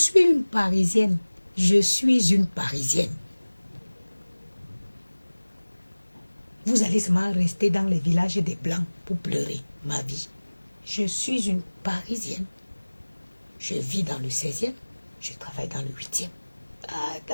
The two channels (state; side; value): inverted; both; correlation -1.00